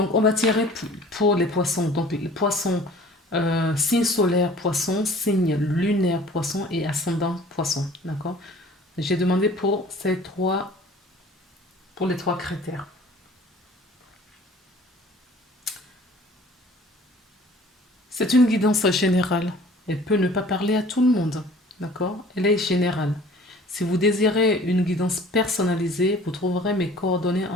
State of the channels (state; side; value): normal; both; correlation 0.49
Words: on va tirer pour les poissons. Donc les poissons, signe solaire poisson, signe lunaire poisson et ascendant poisson. D'accord? J'ai demandé pour les trois critères. C'est une guidance générale. Elle peut ne pas parler à tout le monde. D'accord? Elle est générale. Si vous désirez une guidance personnalisée, vous trouverez mes coordonnées